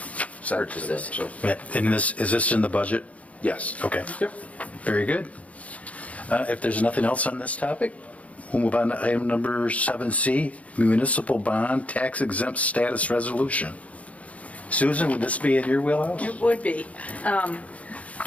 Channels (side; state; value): right; late; 0.067 ms